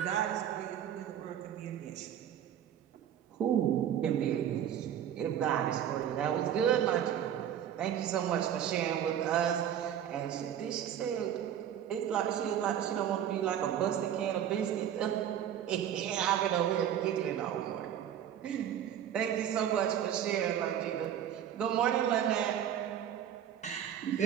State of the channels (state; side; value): quieter; left; 9.9 dB